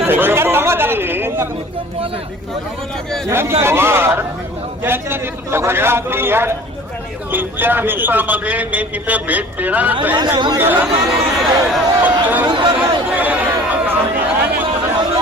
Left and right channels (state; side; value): normal; both; correlation 0.46